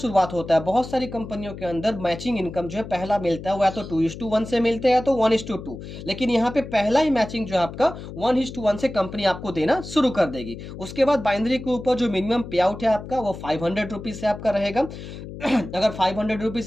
होता है। बहुत सारी कंपनियों के अंदर मैचिंग इनकम जो है पहला मिलता है वो या तो 2:1 से मिलते हैं या तो 1:2, लेकिन यहाँ पे पहला ही मैचिंग जो है आपका 1:1 से कंपनी आपको देना शुरू कर देगी। उसके बाद बाइनरी के ऊपर जो मिनिमम पे आउट है आपका वो 500 रुपीज से आपका रहेगा। अगर 500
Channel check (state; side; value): noise; left; hum, 11 dB below the sound